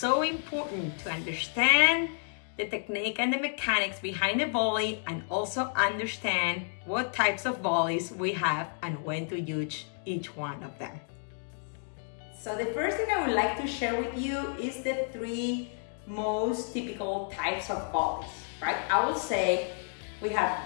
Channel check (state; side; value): silent; right; 57 dB below the other